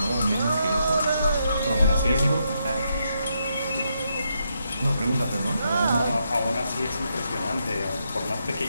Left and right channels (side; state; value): both; inverted; correlation -0.80